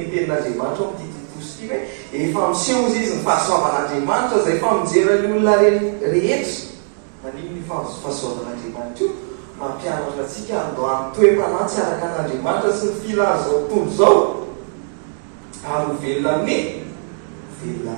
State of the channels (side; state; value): left; silent; digital silence